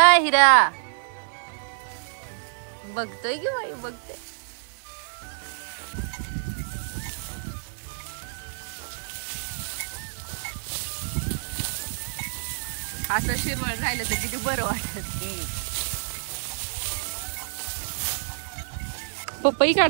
बघतोय की बाई बघतोय. असं शिरवळ राहिलं तर किती बरं वाटत. पपई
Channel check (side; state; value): left; silent; 59 dB below the other